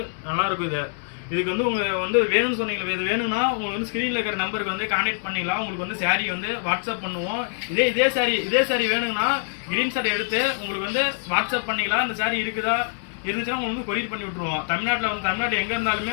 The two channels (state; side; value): silent; right; digital silence